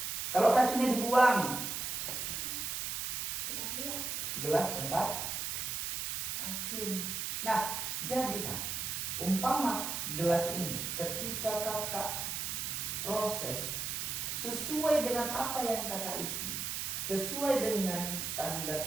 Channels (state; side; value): noise; right; hiss, 2 dB below the sound